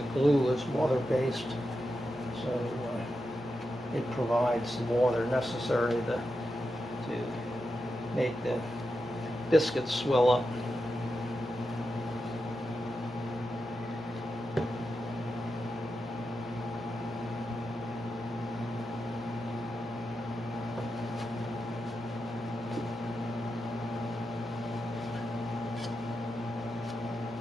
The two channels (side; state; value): both; normal; correlation 0.88